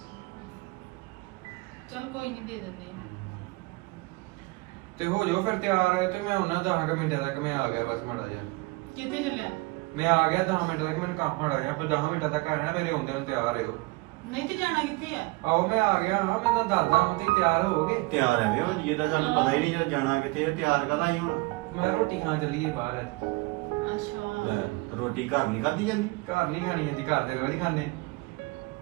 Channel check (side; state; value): left; quieter; 24.2 dB